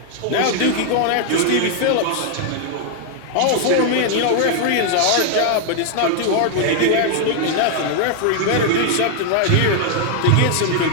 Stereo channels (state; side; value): different; both; correlation 0.00